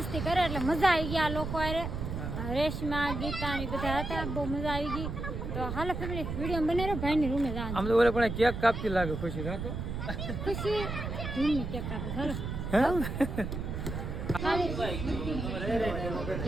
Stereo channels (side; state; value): right; noise; rumble, 4 dB below the sound